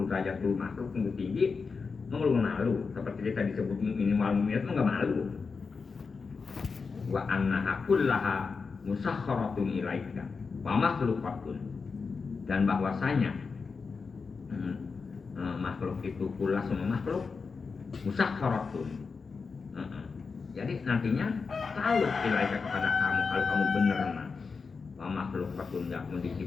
derajat lu makhluk lu tinggi, lu malu seperti kita disebut minimal minat lu enggak malu. Wa annaha kullaha musakharatun ilaika wa makhluqatun, dan bahwasanya makhluk itu kullah semua makhluk musakharatun. Jadi nantinya tahu ilaika kepada kamu kalau kamu benar mah. Wa makhluqatun yakum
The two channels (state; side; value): quieter; right; 4.9 dB